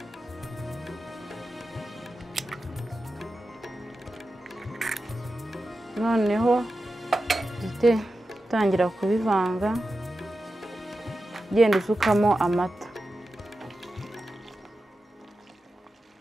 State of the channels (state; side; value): normal; both; correlation 0.92